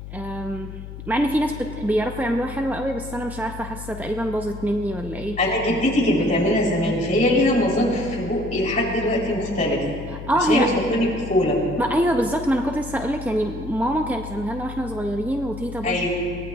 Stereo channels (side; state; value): left; noise; hum, 11 dB below the sound